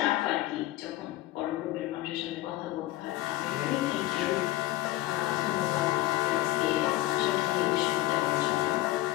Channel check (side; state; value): right; quieter; 16.2 dB